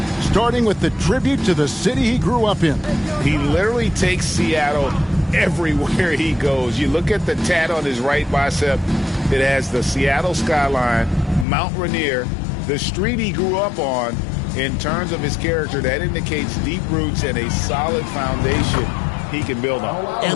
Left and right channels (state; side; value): drops out; right; at 11.5 s